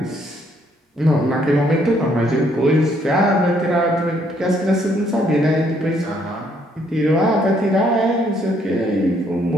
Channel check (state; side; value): normal; both; correlation 0.69